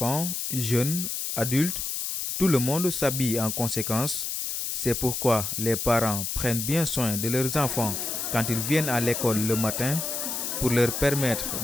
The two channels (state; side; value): noise; left; hiss, 3 dB below the sound